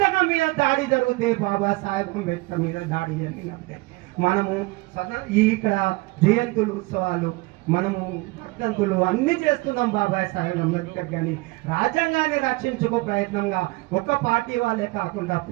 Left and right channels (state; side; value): quieter; left; 23.5 dB